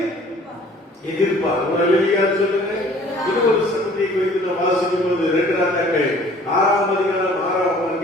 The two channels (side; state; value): both; normal; correlation 0.52